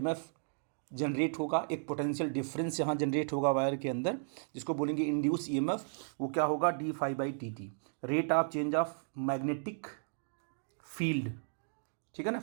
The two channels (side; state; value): left; silent; digital silence